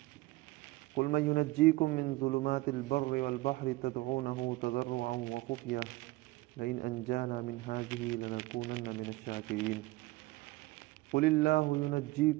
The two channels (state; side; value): quieter; left; 19.9 dB